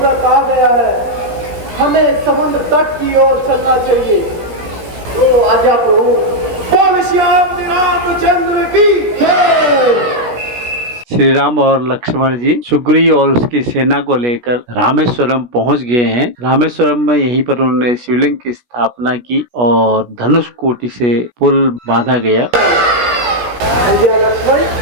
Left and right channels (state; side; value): late; left; 16 ms